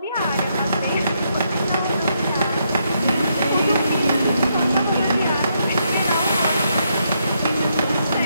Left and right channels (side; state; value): both; inverted; correlation -0.77